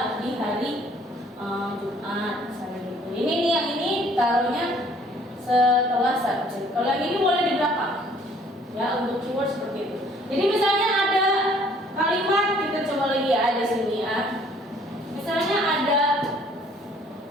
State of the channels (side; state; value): both; normal; correlation 0.58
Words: di hari Jumat misalnya gitu. Ini nih yang ini taruhnya setelah subjek. Kalau yang ini boleh di belakang ya, untuk keyword seperti itu. Jadi misalnya ada kalimat, kita coba lagi ya, ada sini ya. Misalnya ada